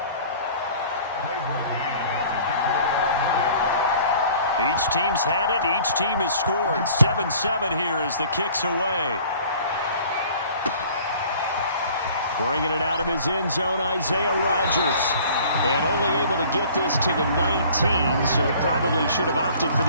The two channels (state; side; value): inverted; both; correlation -0.50